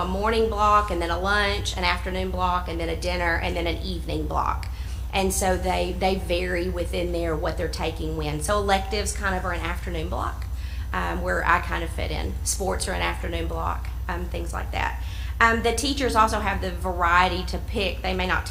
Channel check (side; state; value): both; identical; correlation 1.00